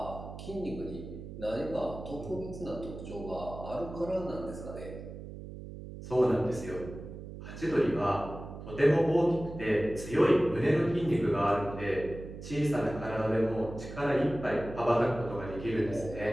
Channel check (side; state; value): right; noise; hum, 11 dB below the sound